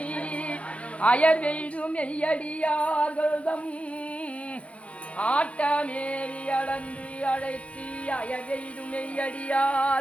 அயர்வெய்தும் மெய்யடியார்கள்தம் ஆட்டமேறி அளந்து அழைத்தி அயர்வெய்தும்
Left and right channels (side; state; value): right; late; 0.063 ms